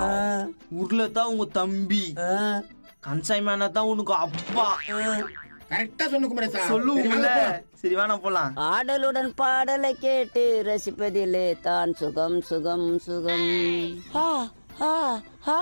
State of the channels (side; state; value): both; inverted; correlation -1.00